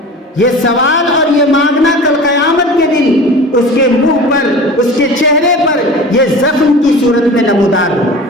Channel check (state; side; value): normal; both; correlation 0.37